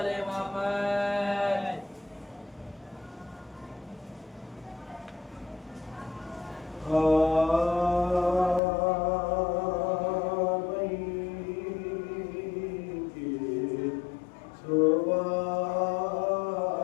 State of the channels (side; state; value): right; drops out; at 8.6 s